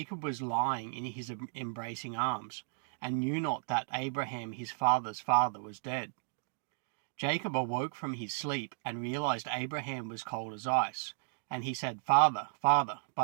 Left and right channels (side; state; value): left; silent; digital silence